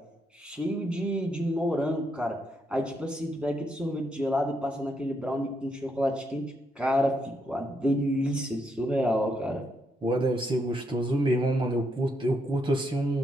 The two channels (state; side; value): normal; both; correlation 0.78